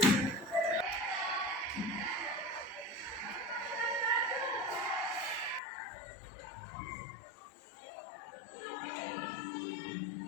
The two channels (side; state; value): right; drops out; at 5.6 s